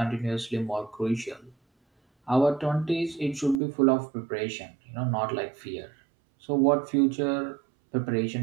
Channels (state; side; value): drops out; left; at 3.6 s